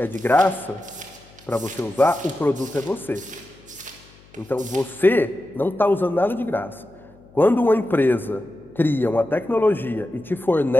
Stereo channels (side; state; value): left; noise; hum, 26 dB below the sound